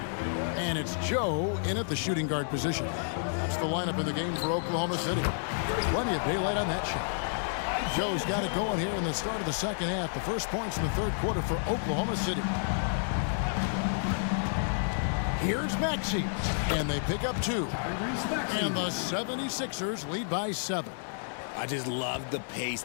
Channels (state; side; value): silent; right; digital silence